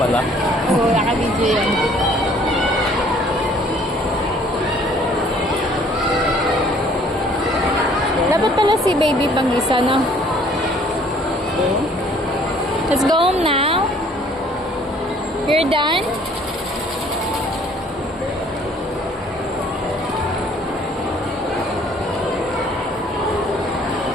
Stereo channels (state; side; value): normal; both; correlation 0.58